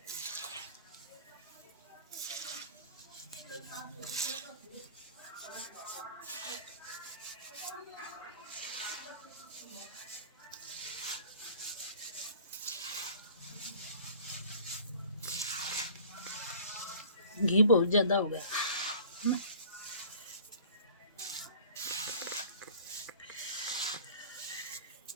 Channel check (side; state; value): both; inverted; correlation -0.46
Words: घी बहुत ज़्यादा हो गया।